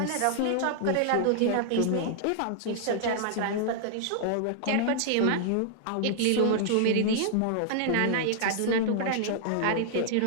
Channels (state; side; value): different; both; correlation -0.01